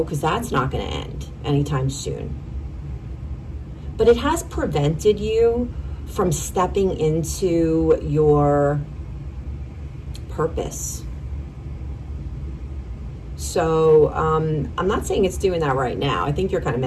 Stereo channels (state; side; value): identical; both; correlation 1.00